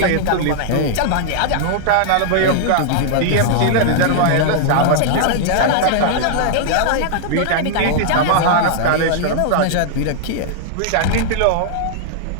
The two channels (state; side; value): different; both; correlation -0.01